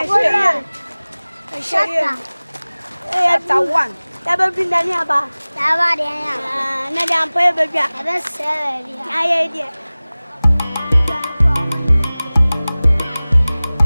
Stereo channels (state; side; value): inverted; both; correlation -0.99